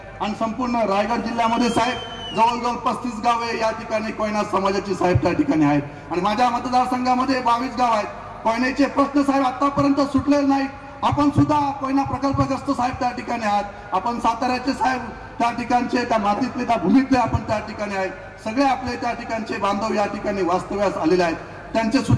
आणि संपूर्ण रायगड जिल्ह्यामध्ये साहेब जवळजवळ 35 गावे या ठिकाणी कोयना समाजाची साहेब त्या ठिकाणी आहेत. आणि माझ्या मतदारसंघामध्ये 22 गाव आहेत. कोयनेचे प्रश्न साहेब आतापर्यंत सुटलेले नाहीत. आपण सुद्धा कोयना प्रकल्पग्रस्त साहेब त्या ठिकाणी आहात. आपण साताऱ्याचे साहेब त्या ठिकाणचे, त्या मातीतले, त्या भूमीतले आपण त्या ठिकाणी आहेत. सगळे आपले त्या ठिकाणचे बांधव या ठिकाणी वास्तव्यास आलेले आहेत. त्यांचे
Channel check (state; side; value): identical; both; correlation 1.00